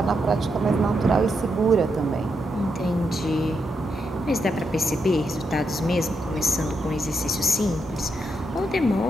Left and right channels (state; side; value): normal; both; correlation 0.82